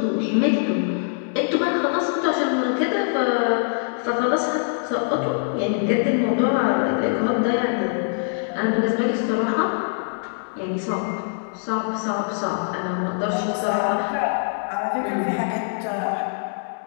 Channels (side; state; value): right; silent; digital silence